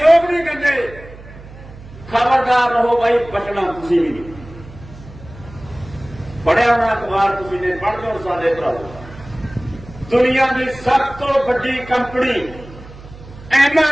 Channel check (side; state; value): right; noise; hum, 18 dB below the sound